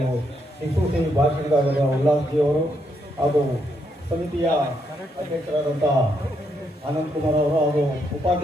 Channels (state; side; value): normal; both; correlation 0.77